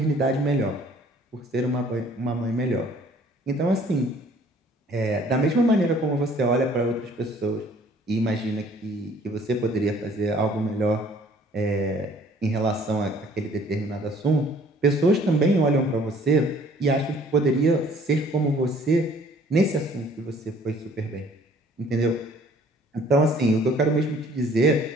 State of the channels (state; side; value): normal; both; correlation 0.56